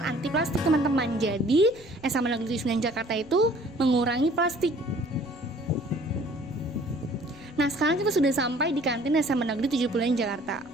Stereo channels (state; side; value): noise; left; rumble, 25 dB below the sound